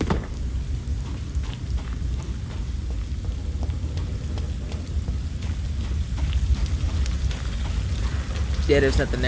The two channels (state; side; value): identical; both; correlation 1.00